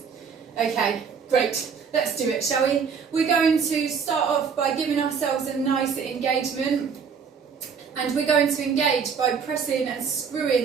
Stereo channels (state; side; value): quieter; left; 6.3 dB